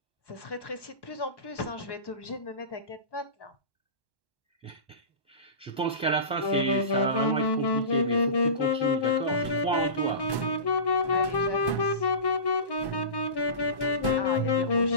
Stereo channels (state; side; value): late; right; 1.1 ms